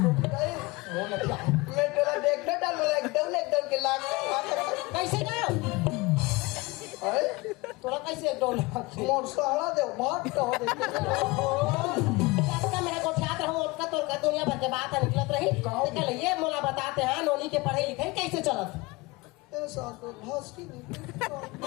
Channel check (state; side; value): quieter; right; 23.8 dB